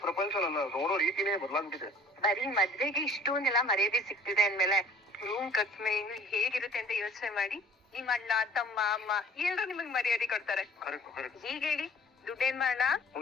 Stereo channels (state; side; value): normal; both; correlation 0.51